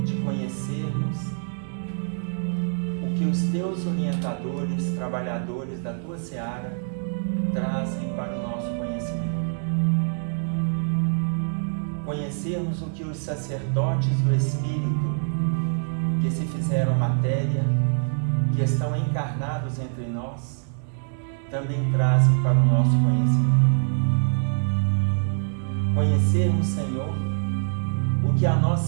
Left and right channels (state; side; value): silent; left; digital silence